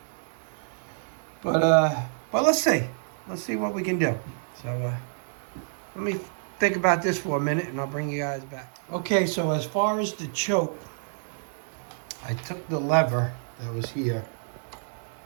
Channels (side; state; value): left; silent; digital silence